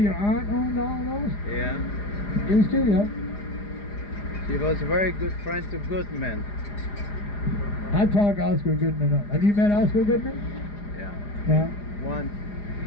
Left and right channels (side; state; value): right; late; 4.9 ms